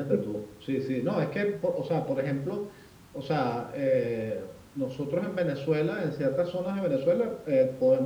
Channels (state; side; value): identical; both; correlation 1.00